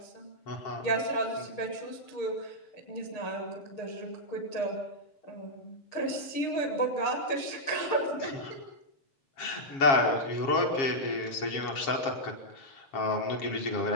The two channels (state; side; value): late; right; 7.3 ms